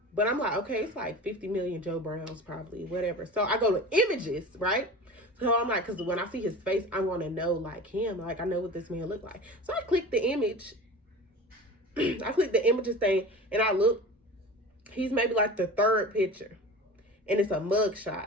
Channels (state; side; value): normal; both; correlation 0.35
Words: But I'm like, okay, it's like 50 million Joe Browns probably, whatever. So I go to images, right? So I'm like, because when I see his face, I want to know, like, him. Like, I know what this man look like. So I click the image. I click the images thing, and I look. He's maybe like the third picture, and it's a mug